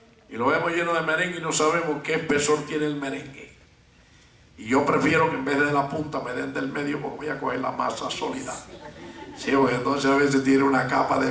y lo vemos lleno de merengue y no sabemos qué espesor tiene el merengue. Y yo prefiero que en vez de la punta me den del medio, porque voy a coger la masa sólida. Sí, porque entonces a veces tiene una capa de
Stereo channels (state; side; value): identical; both; correlation 1.00